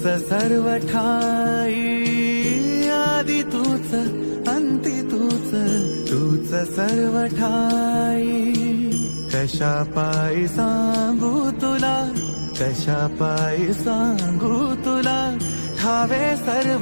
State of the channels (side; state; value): both; inverted; correlation -1.00